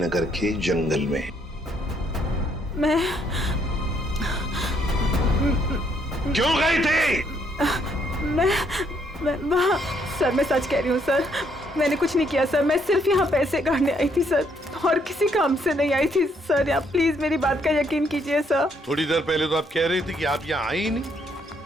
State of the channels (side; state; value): both; normal; correlation 0.70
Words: के जंगल में? मैं क्यों गई थी? मैं वहाँ सर, मैं सच कह रही हूँ सर, मैंने कुछ नहीं किया सर। मैं सिर्फ यहाँ पैसे गाड़ने आई थी सर, और किसी काम से नहीं आई थी सर। आप प्लीज मेरी बात का यकीन कीजिए सर। थोड़ी देर पहले तो आप कह रही थी कि आप यहाँ आई ही नहीं,